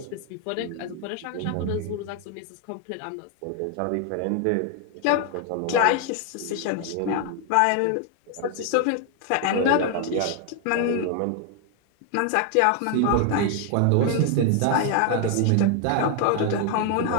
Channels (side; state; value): both; different; correlation 0.00